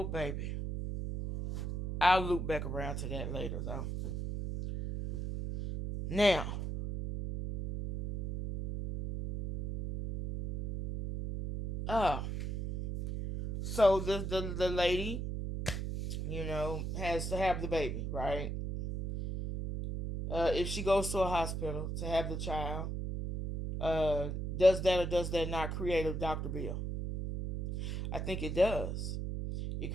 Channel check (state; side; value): noise; right; hum, 3 dB below the sound